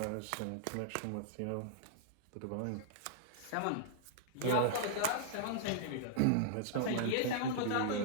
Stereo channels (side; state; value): both; different; correlation -0.02